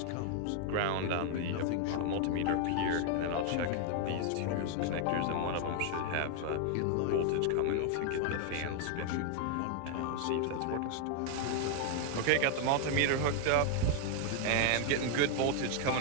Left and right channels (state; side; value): different; both; correlation 0.00